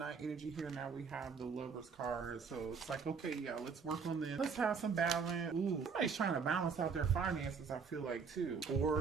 energy here. Now we have the Lover's card. So it's like, okay, yeah, let's work on this. Let's have some balance. Ooh, somebody's trying to balance out their finances, I feel like, too.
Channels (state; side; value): quieter; left; 5.7 dB